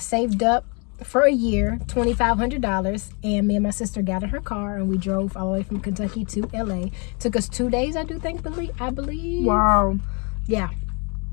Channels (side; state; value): right; quieter; 33.8 dB